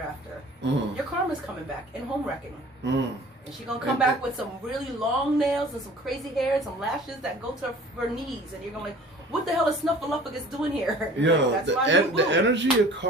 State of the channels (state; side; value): normal; both; correlation 0.47